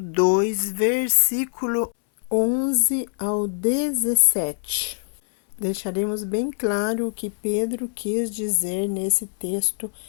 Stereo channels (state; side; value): silent; right; 63 dB below the other